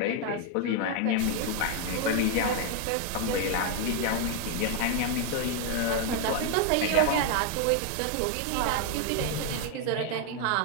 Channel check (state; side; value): different; both; correlation 0.01